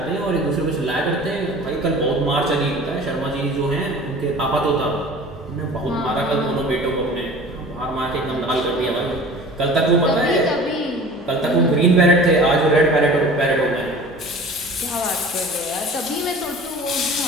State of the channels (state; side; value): normal; both; correlation 0.42